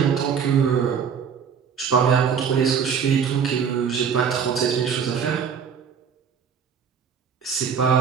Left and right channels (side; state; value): left; quieter; 7.1 dB